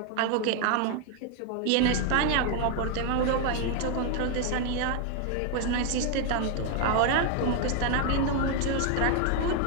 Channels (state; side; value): different; both; correlation 0.00